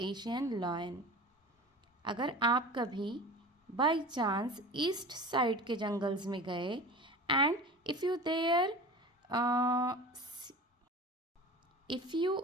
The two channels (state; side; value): normal; both; correlation 0.36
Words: Asian lion. अगर आप कभी बाई चांस ईस्ट साइड के जंगल्स में गए and if you there If you